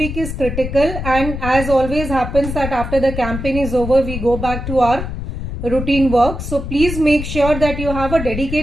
is critical, and as always happens that after the campaign is over, we go back to our routine work. So please make sure that you have a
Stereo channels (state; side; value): noise; left; rumble, 6 dB below the sound